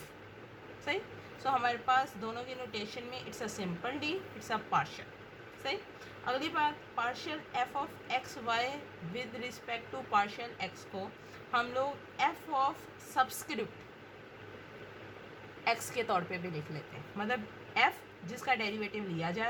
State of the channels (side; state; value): both; identical; correlation 1.00